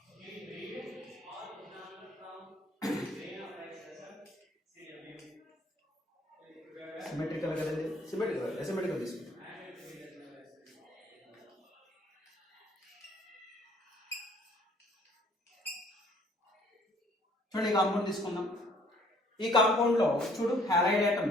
Symmetrical కదండి, అసిమెట్రికల్ తీసుకుంటాం. చూడండి, ఈ కాంపౌండ్ తీసుకుందాం. ఈ కాంపౌండ్ లో చూడు హ్యాలైడ్ ఆటమ్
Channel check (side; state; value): both; normal; correlation 0.59